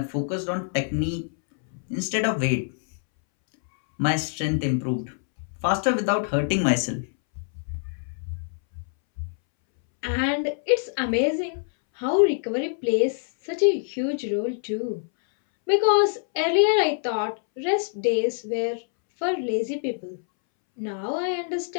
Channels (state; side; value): silent; right; 62 dB below the other